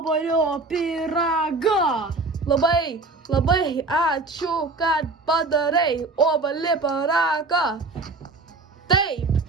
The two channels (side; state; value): left; quieter; 3.5 dB